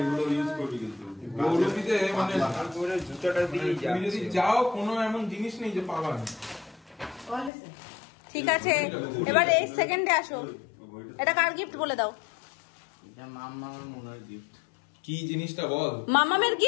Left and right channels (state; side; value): drops out; right; at 7.5 s